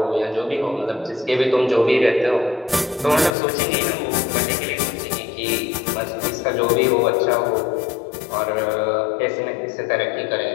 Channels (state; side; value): drops out; right; at 3.3 s